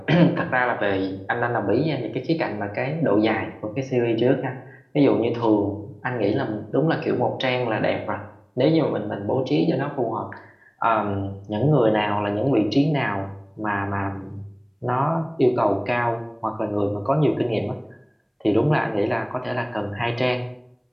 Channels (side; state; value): both; identical; correlation 1.00